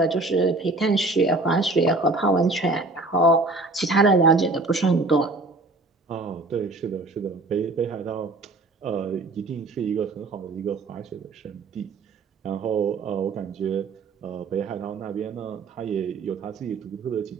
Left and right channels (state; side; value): quieter; left; 3.2 dB